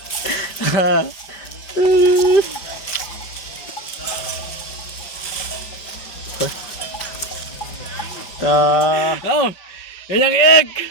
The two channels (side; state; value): right; late; 5.3 ms